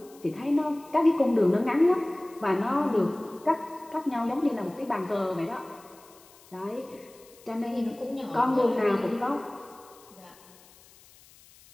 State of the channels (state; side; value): noise; left; hiss, 25 dB below the sound